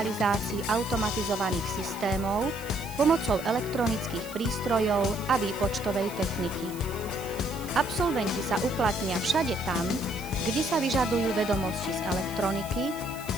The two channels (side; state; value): right; noise; hiss, 16 dB below the sound